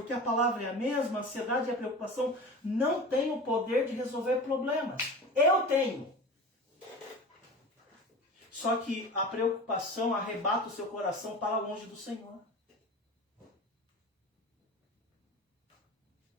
a palavra é a mesma, a ansiedade e a preocupação não têm o poder de resolver problemas. Eu tenho. Só que a preocupação arrebata o seu coração para longe do Senhor.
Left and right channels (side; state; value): both; normal; correlation 0.33